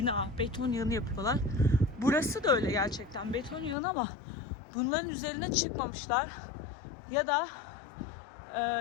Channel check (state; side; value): drops out; right; at 3.8 s